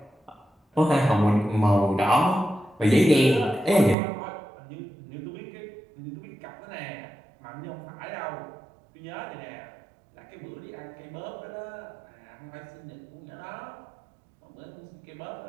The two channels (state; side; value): drops out; left; at 4.0 s